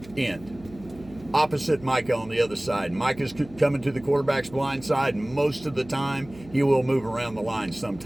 end. Opposite Micah on the other side. Micah's coming to the quarterback's blind side, and most of the time he will move around the line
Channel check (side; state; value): right; noise; hum, 20 dB below the sound